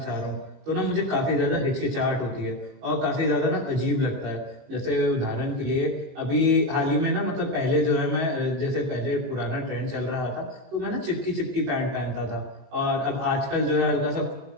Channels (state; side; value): late; left; 19 ms